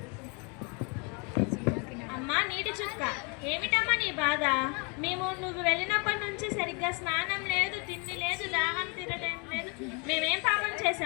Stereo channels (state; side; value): quieter; right; 32.9 dB